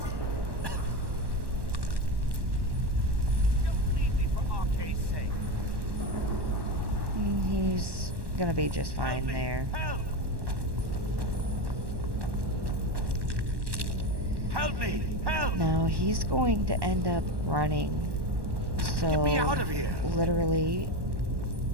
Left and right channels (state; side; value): late; left; 1.1 ms